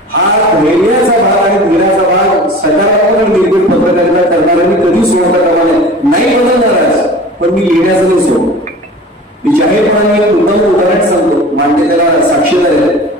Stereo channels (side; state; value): both; normal; correlation 0.39